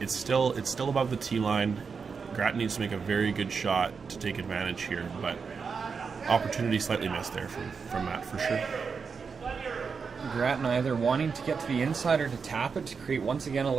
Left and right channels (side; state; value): left; quieter; 5.5 dB